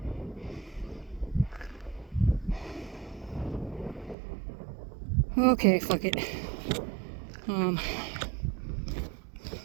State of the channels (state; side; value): drops out; left; at 4.2 s